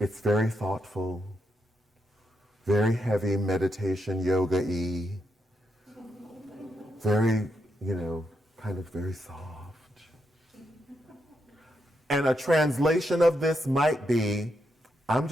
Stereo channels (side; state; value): both; normal; correlation 0.81